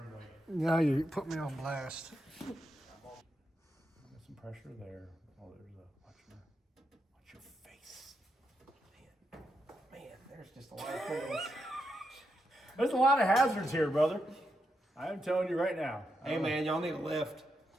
Now you put me on blast. Got some pressure there. Oh, there's a watch your face. Man, there's just a lot of things. There's a lot of hazards here, brother. I am telling you right now. Hey, man, y'all need a lift.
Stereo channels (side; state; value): both; normal; correlation 0.84